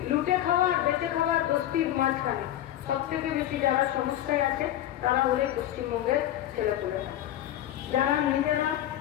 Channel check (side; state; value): right; quieter; 12.7 dB